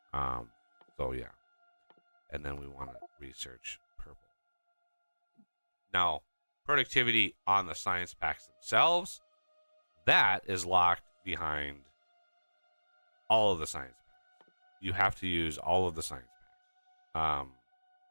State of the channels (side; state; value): both; inverted; correlation -1.00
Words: modules. So yeah, and then we want to research purple. Now, productivity on the science packs themselves, that is locked behind all of the science packs. You have to use all of the science packs.